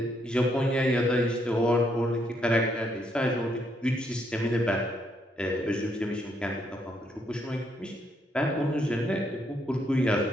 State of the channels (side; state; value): both; normal; correlation 0.74